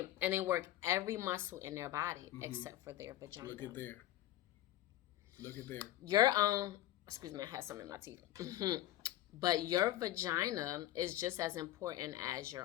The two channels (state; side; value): quieter; right; 14.4 dB